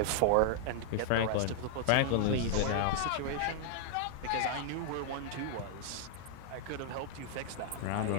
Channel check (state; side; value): different; both; correlation -0.01